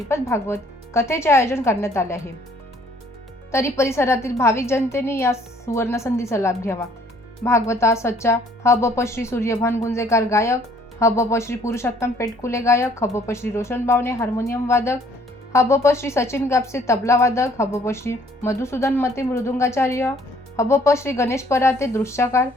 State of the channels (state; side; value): normal; both; correlation 0.60